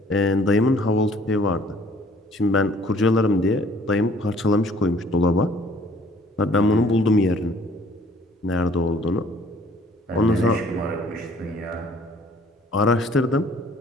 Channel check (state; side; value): normal; both; correlation 0.57